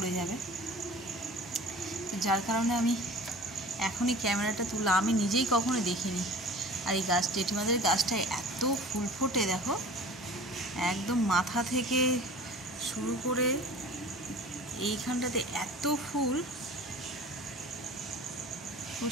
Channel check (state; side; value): normal; both; correlation 0.41